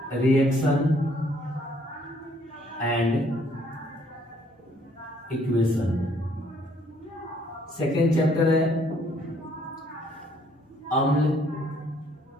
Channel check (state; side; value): normal; both; correlation 0.64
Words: reaction and equation. Second chapter है अम्ल,